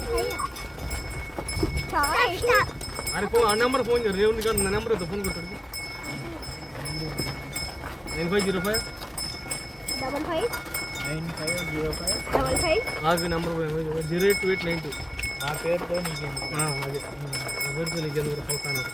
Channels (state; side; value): identical; both; correlation 1.00